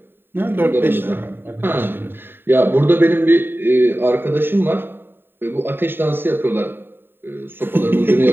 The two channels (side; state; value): left; late; 0.10 ms